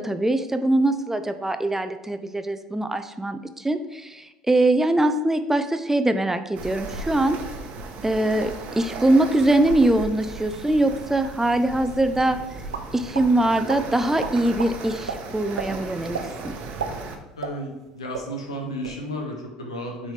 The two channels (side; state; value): both; normal; correlation 0.82